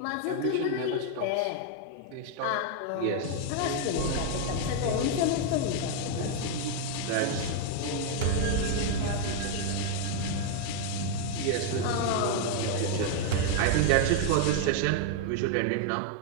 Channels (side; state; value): both; different; correlation 0.00